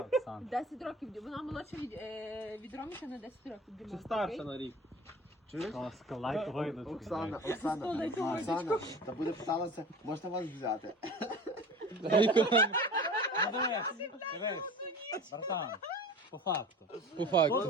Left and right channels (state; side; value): normal; both; correlation 0.39